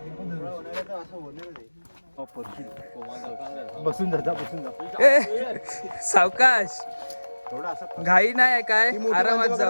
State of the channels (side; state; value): both; inverted; correlation -1.00